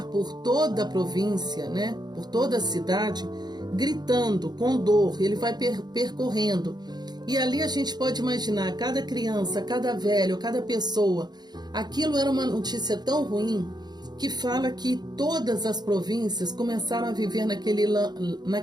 por toda a província, né? Por toda a cidade, gritando com dor. Ele vai percorrendo. E ali a gente pode imaginar, cada criança, cada velho, cada pessoa. Aquilo era uma notícia tão ruim que fala que todas as províncias começaram a viver naquele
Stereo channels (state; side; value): late; left; 0.20 ms